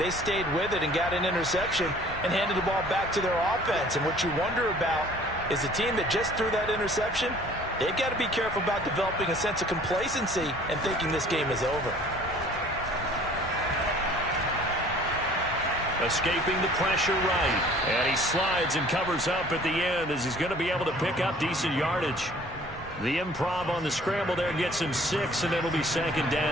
stayed with it and got an interception and handed the ball back to their offense. And what you wonder about is the team that just threw that interception, they've got to be careful about developing a sense of complacency and thinking this game is over. Escaping the pressure right. And he slides and covers up at the end as he's going to be able to pick up decent yardage. The improv on the scramble there gets him 6, and it'll be 2nd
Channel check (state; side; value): normal; both; correlation 0.52